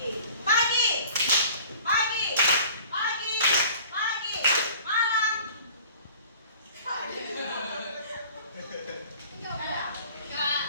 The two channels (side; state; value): both; inverted; correlation -0.47